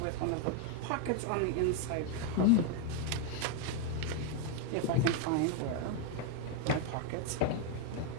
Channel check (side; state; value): both; different; correlation 0.01